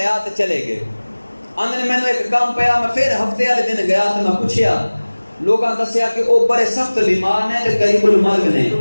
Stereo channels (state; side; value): inverted; both; correlation -1.00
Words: تے چلے گئے۔ آندے نے مینوں ایک کام پیا، میں پھر ہفتے والے دن گیا تے میں پوچھیا، لوگاں دسیا کہ او بڑے سخت بیمار نے تے قریب المرگ نے،